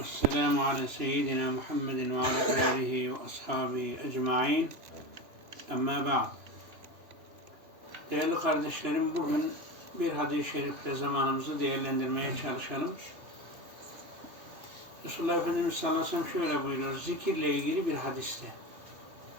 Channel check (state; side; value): late; left; 2.9 ms